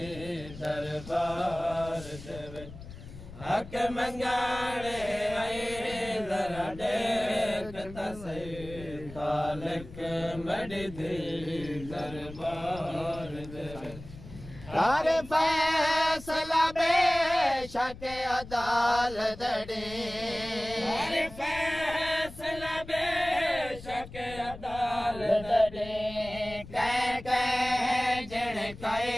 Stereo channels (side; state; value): left; noise; rumble, 15 dB below the sound